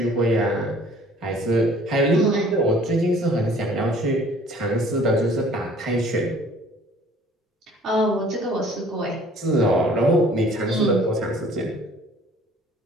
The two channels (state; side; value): normal; both; correlation 0.53